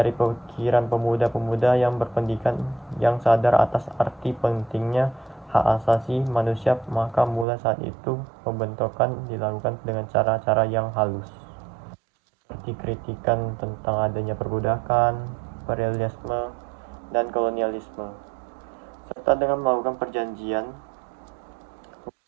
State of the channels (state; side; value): drops out; left; at 7.5 s